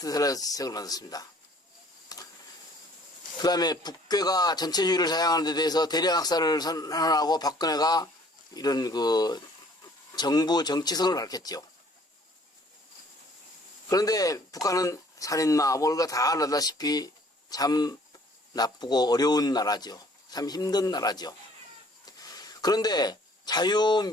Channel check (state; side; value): normal; both; correlation 0.57